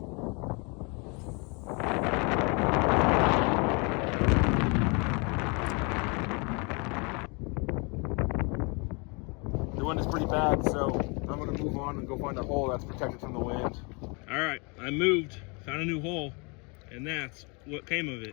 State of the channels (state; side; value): quieter; right; 31.4 dB